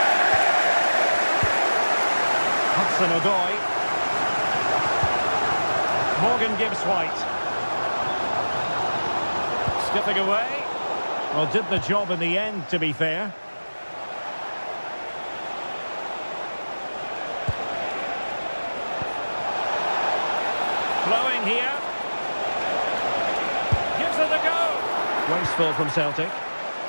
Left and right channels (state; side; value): inverted; both; correlation -1.00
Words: Hudson-Odoi. Morgan Gibbs-White. Skipping away. Well, did the job in the end, to be fair. Flowing here. Gives it a go. Wasteful from Celtic.